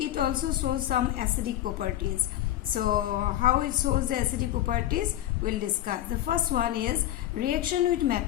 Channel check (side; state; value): right; quieter; 13.4 dB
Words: also shows some acidic properties. So how it shows the acidic properties we'll discuss. The first one is reaction with